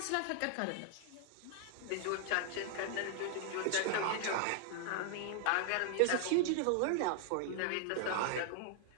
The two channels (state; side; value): different; both; correlation 0.00